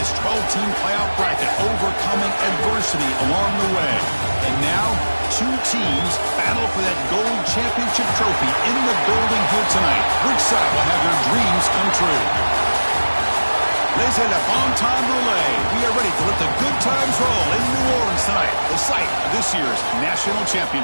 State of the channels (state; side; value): inverted; both; correlation -1.00